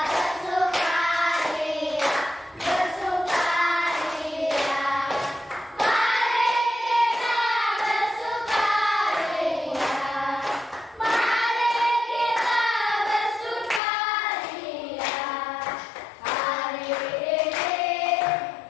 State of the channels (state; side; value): drops out; right; at 13.8 s